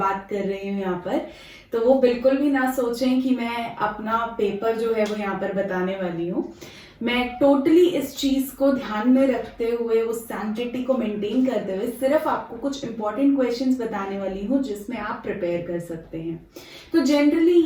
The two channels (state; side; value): identical; both; correlation 1.00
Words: कर रही हूँ यहाँ पर, तो वो बिल्कुल भी ना सोचें कि मैं अपना पेपर जो है वो यहाँ पर बताने वाली हूँ। मैं टोटली इस चीज को ध्यान में रखते हुए, उस सैंक्टिटी को मेंटेन करते हुए सिर्फ आपको कुछ इंपॉर्टेंट क्वेश्चंस बताने वाली हूँ जिसमें आप प्रिपेयर कर सकते हैं। तो जनरली